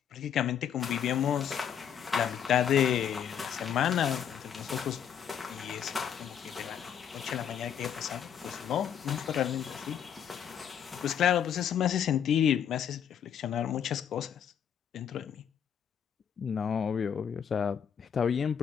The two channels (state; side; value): quieter; right; 8.5 dB